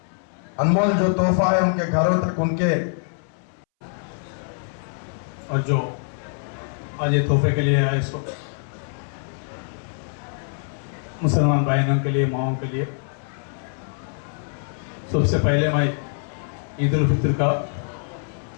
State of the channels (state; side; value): silent; right; 62 dB below the other